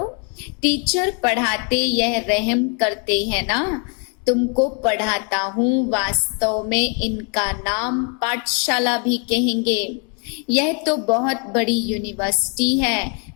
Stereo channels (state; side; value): quieter; right; 37.4 dB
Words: टीचर पढ़ाते यह रहम करते हैं ना। तुमको पढ़ाता हूँ, वास्तव में इनका नाम पाठशाला भी कहेंगे। यह तो बहुत बड़ी यूनिवर्सिटी है,